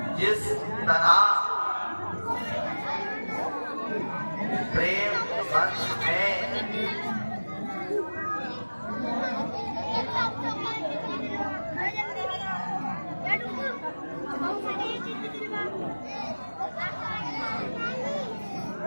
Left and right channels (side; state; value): both; inverted; correlation -1.00